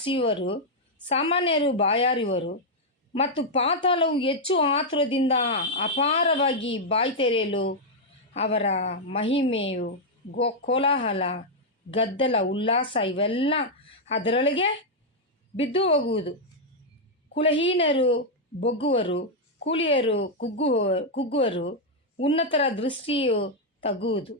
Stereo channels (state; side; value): normal; both; correlation -0.02